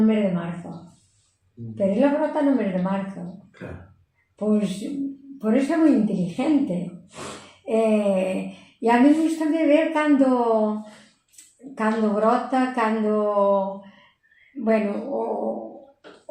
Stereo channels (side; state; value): both; identical; correlation 1.00